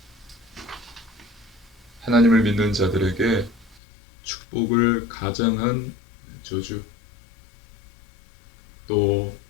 하나님을 믿는 자들에게 축복을 가장한 저주, 또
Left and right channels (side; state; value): right; drops out; at 3.8 s